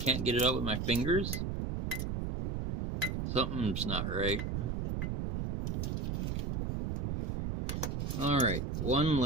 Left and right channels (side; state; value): right; noise; rumble, 2 dB below the sound